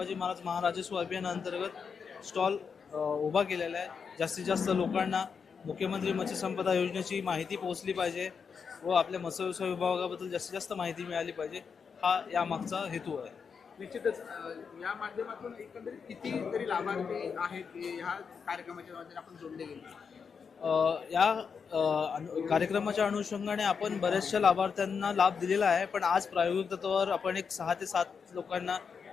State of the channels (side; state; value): right; quieter; 6.0 dB